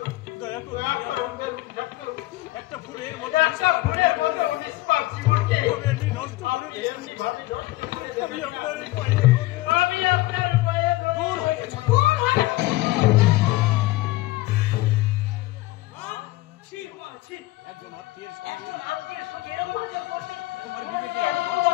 একটা ফুলের মতো নিষ্পাপ জীবনকে নষ্ট করে এমনি ভাবে নষ্ট করে দেবেন। আমি আপনার এই পায়ে আমি আপনার পায়ে দূর হয়ে গেছে। একজন আত্মীয়ের সঙ্গে তোমার বিবেকে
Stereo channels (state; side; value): quieter; right; 18.7 dB